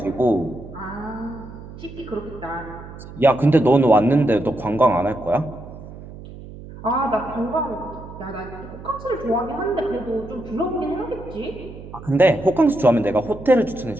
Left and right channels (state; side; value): noise; right; hum, 15 dB below the sound